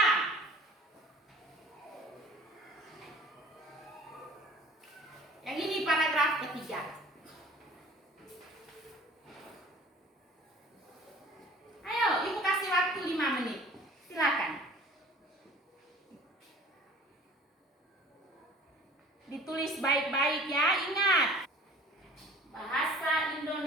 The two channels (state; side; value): normal; both; correlation 0.48